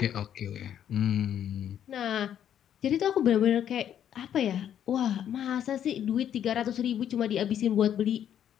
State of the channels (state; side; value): quieter; right; 9.9 dB